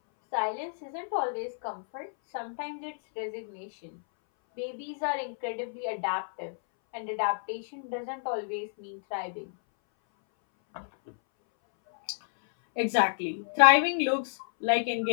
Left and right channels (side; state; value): right; silent; 58 dB below the other